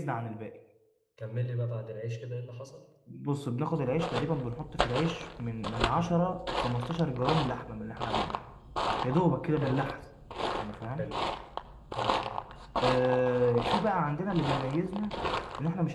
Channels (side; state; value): both; identical; correlation 1.00